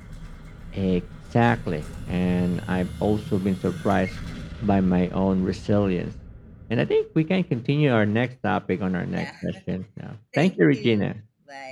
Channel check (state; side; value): identical; both; correlation 1.00